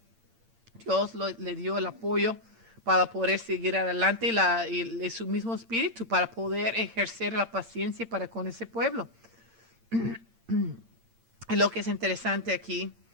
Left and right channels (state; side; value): late; left; 8.8 ms